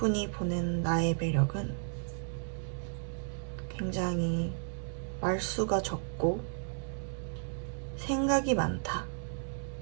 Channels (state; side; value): silent; left; 55 dB below the other